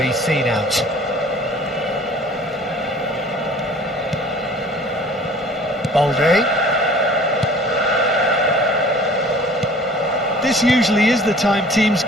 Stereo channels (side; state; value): both; normal; correlation 0.48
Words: seen out. Balde. This usually is the time teams